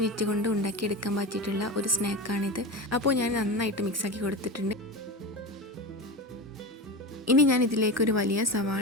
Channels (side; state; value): both; normal; correlation 0.24